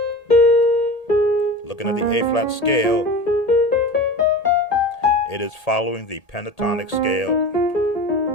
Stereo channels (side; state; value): right; late; 1.8 ms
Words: Looking at the A flat scale, it is following the pentatonic scale.